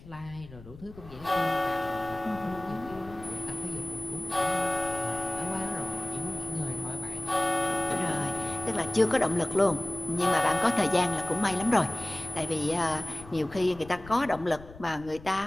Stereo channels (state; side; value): noise; left; rumble, 17 dB below the sound